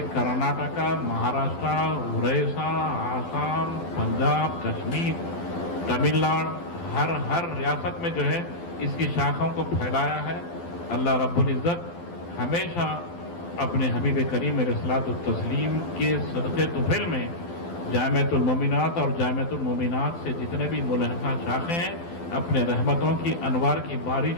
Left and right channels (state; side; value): late; right; 12 ms